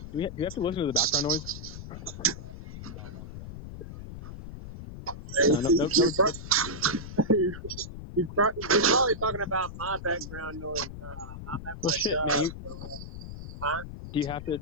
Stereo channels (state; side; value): noise; left; rumble, 10 dB below the sound